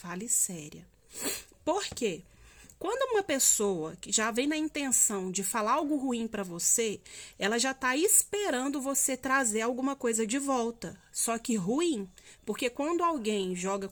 séria. Por quê? Quando uma pessoa que já vem na intenção de falar algo ruim para você, ela já está esperando você trazer alguma coisa de volta. Só que ruim, porque quando alguém joga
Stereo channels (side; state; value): both; identical; correlation 1.00